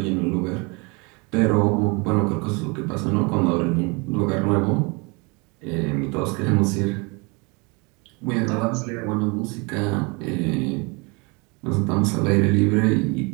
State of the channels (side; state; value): left; quieter; 29.3 dB